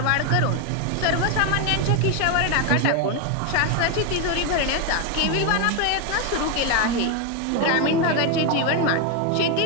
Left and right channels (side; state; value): both; different; correlation 0.02